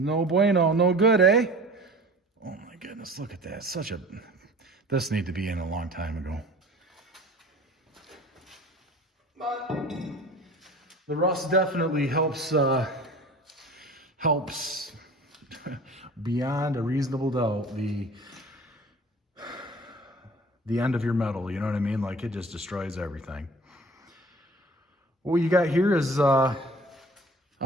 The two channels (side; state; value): both; normal; correlation 0.43